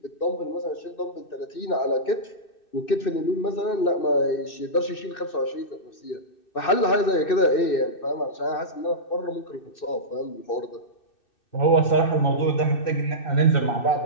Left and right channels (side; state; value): right; late; 2.6 ms